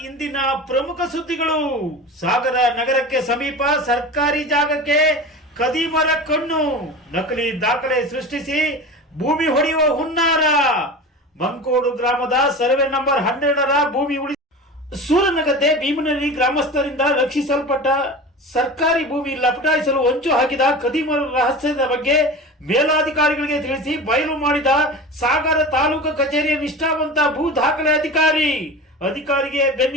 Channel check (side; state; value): both; normal; correlation 0.32